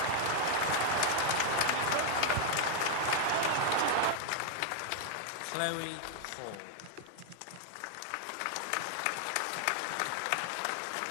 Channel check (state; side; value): different; both; correlation 0.00